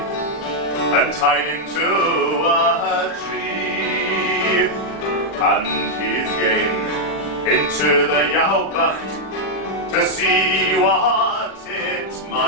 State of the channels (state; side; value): late; right; 40 ms